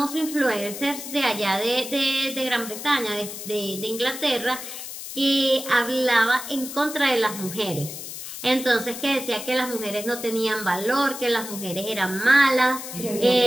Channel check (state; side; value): noise; left; hiss, 9 dB below the sound